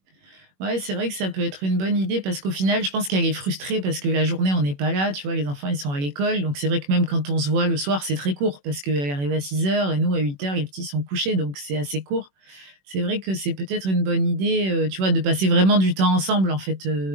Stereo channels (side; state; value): left; late; 21 ms